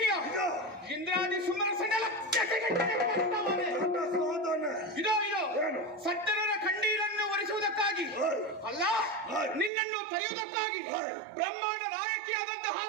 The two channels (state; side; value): drops out; left; at 9.7 s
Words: ಇಂದ್ರಾದಿ ಸುಮನ ಇದೋ ಇದೋ ಸಜ್ಜನರ ಕಣ್ಣೀರನ್ನು ಒರೆಸುವುದಕ್ಕಾಗಿ ಅಲ್ಲ, ನಿನ್ನನ್ನು ತರೆಯುವುದಕ್ಕಾಗಿ ಬ್ರಹ್ಮಾಂಡ ನಾಯಕಿಯಾದಂತಹ